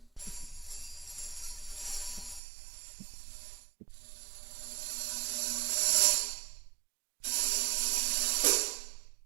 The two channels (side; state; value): left; drops out; at 2.4 s